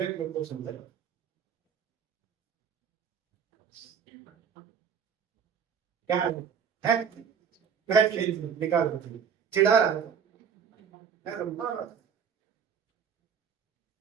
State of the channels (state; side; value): quieter; left; 7.1 dB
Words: लो तो समझे क्या है? बैठ के निकाल दो, चिढ़ा रहा है मारा।